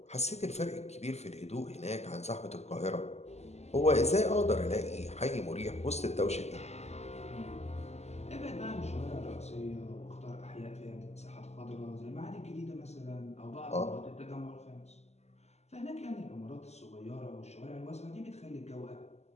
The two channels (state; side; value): late; right; 0.32 ms